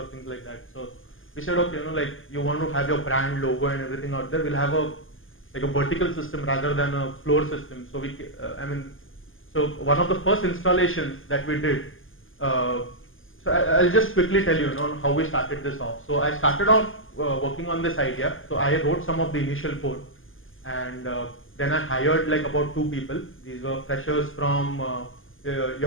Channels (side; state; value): right; late; 0.59 ms